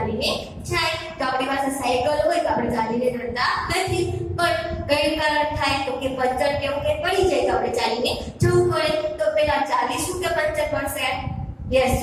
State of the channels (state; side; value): identical; both; correlation 1.00